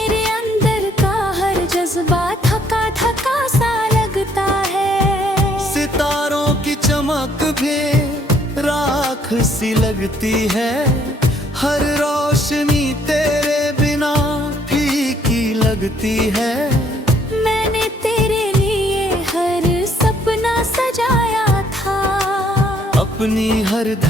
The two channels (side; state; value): both; normal; correlation 0.66